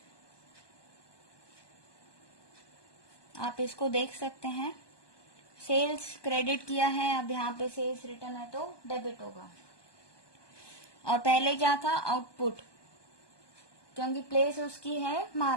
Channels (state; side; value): late; right; 1.2 ms